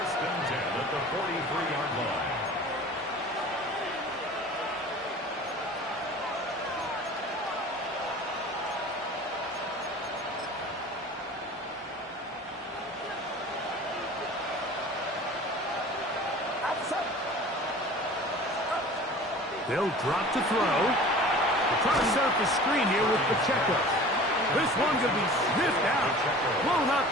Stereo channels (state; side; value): normal; both; correlation 0.42